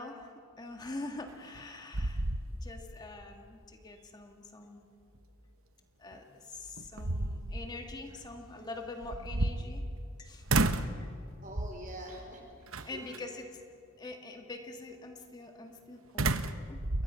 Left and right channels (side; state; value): both; normal; correlation 0.62